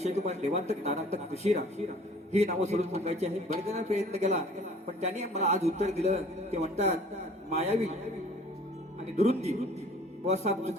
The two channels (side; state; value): both; normal; correlation 0.51